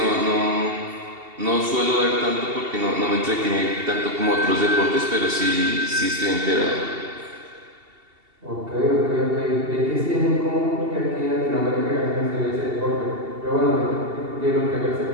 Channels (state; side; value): late; left; 2.7 ms